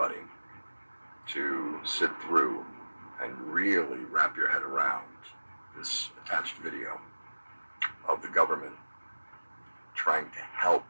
to sit through and really wrap your head around this attached video of the government trying to help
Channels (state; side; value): inverted; both; correlation -1.00